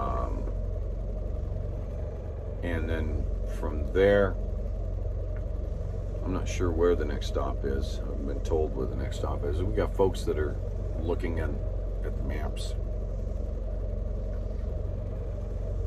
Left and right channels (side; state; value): both; identical; correlation 1.00